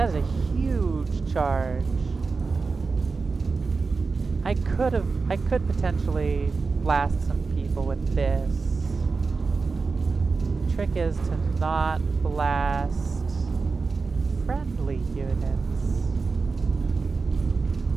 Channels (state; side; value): quieter; left; 4.4 dB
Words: is a huge charge. I could potentially blast some people with this. Trick is to not blast friendly units.